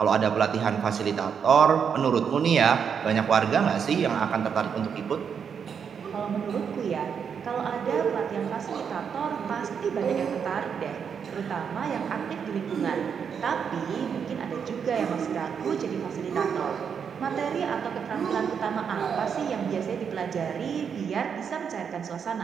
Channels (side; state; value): left; quieter; 7.0 dB